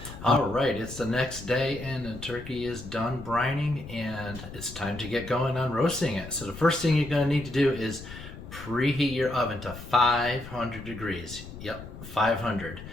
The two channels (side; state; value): left; noise; rumble, 13 dB below the sound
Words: All right, it's the next day, and the turkey is done brining, and it's time to get going on roasting it. So the first thing you're going to need to do is preheat your oven to 500 degrees. Yep, 500,